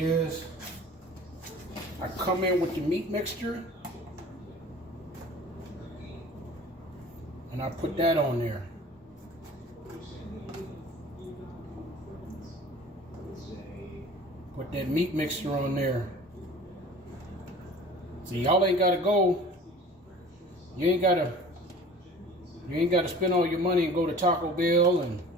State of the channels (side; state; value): both; normal; correlation 0.44